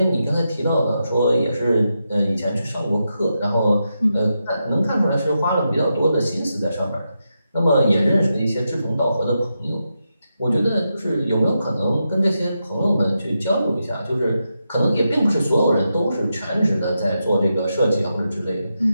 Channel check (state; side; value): inverted; both; correlation -0.86